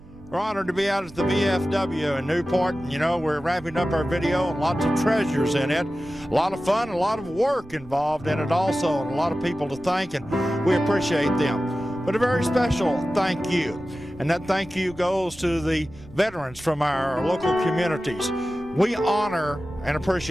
We're honored to be out at the VFW in Newport. You know, we're wrapping up our video and lots of treasures in it. A lot of fun, a lot of work involved in it also, and a lot of people to thank, and we appreciate them. But a very special thank you. And that thank you goes to the veterans from our local communities. We honor and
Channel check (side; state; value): right; noise; rumble, 21 dB below the sound